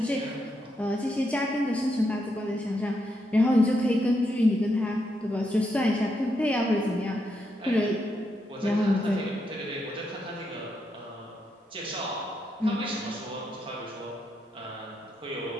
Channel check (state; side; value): normal; both; correlation 0.81